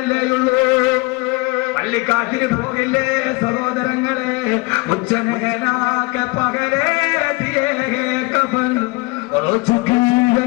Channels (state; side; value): quieter; right; 25.7 dB